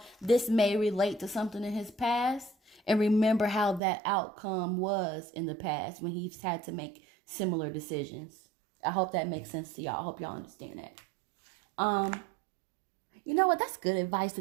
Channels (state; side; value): drops out; left; at 3.8 s